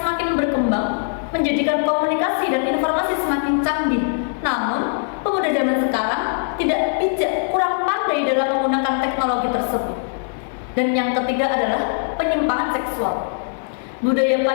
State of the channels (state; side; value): silent; right; 65 dB below the other